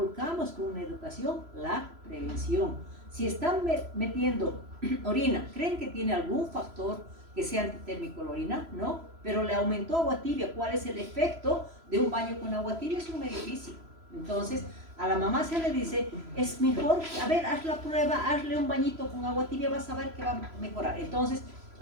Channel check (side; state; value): left; late; 3.0 ms